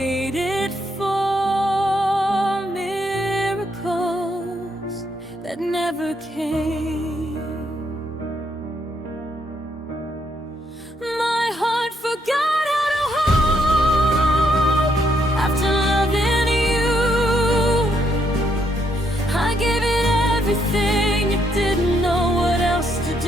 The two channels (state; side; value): normal; both; correlation 0.74